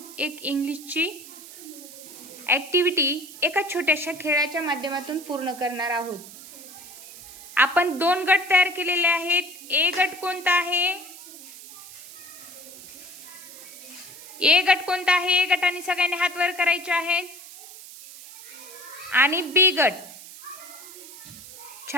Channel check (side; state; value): right; noise; hiss, 16 dB below the sound